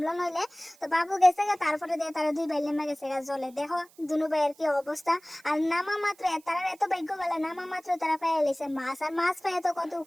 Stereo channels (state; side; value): noise; right; hiss, 28 dB below the sound